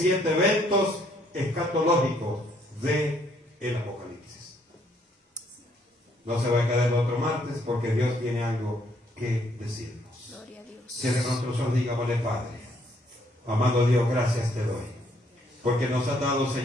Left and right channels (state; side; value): normal; both; correlation 0.68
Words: eventos escatológicos del Apocalipsis. No se va a quedar el otro martes porque Dios tiene algo que decirnos. Gloria a Dios. Cierre nuestros ojos, digámosle, Padre, amado Dios, gracias te doy, porque nos ha dado,